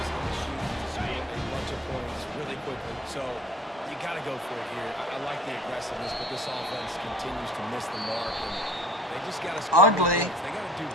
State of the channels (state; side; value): normal; both; correlation 0.50